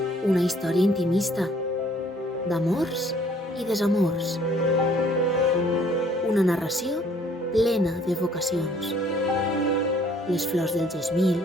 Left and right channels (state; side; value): normal; both; correlation 0.59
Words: Una història intimista, d'amors i desamors. Una narració plena de vocacions. Les flors del gesmil,